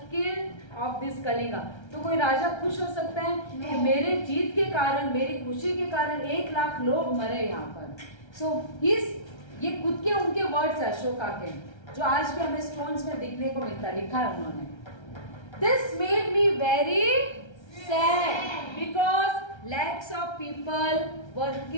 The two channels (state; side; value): late; right; 1.3 ms